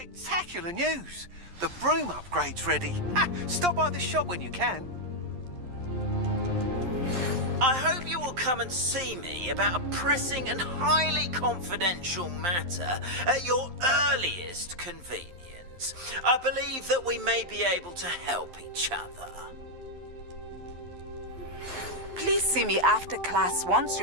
news! The broom upgrade's ready. Ha! Stop by the shop when you can. I hope you will come and see me about a pressing and highly confidential matter at your earliest convenience. I believe that we may be able to help each other. Please see me after class once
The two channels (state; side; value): late; left; 11 ms